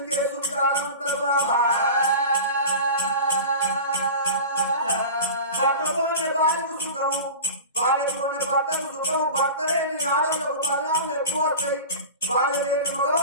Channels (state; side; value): inverted; both; correlation -0.33